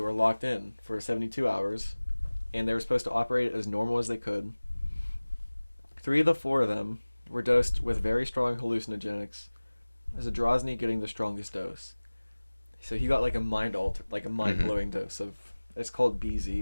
locked in for 72 hours, and they were supposed to operate as normal as they could. 3 of the 4 of them were dosed with very strong hallucinogenics, Zadrozny getting the strongest dose. So he got like a mind-blowing dose of, it's called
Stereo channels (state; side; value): inverted; both; correlation -1.00